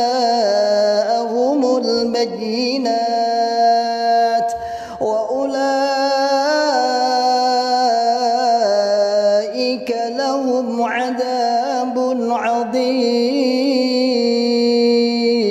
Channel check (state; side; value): identical; both; correlation 1.00